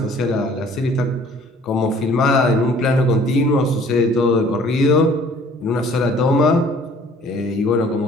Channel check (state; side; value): normal; both; correlation 0.54